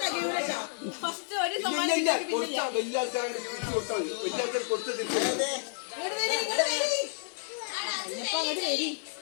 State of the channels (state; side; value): silent; right; digital silence